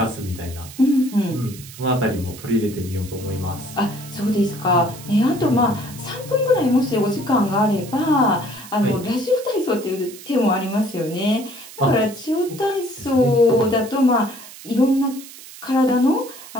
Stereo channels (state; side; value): noise; right; hiss, 16 dB below the sound